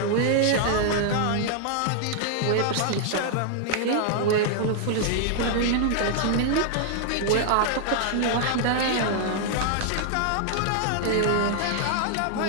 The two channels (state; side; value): different; both; correlation -0.01